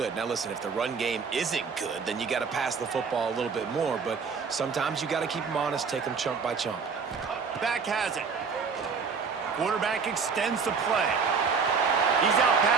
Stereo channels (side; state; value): left; quieter; 5.5 dB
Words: Now, listen, if the run game isn't good, then you got to pass the football a little bit more. But sometimes you got to keep them honest, take them chunk by chunk. Back has it. Quarterback extends the play. He's out